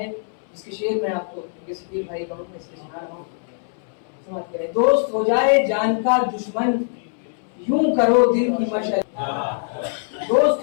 जिसके शेर में आपको सकील भाई कहूँ मैं इसके सुना रहा हूँ, समझ करें। दोस्त हो जाए जान का दुश्मन, यूं करो दिल की मशल, दोस्त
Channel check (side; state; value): right; silent; 62 dB below the other